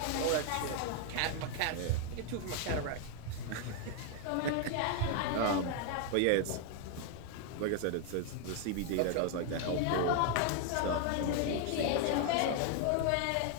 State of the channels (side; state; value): both; different; correlation 0.00